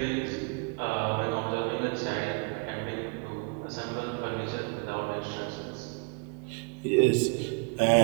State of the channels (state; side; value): quieter; left; 33.3 dB